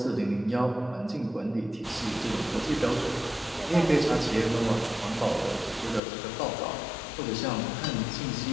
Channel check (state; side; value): drops out; right; at 6.0 s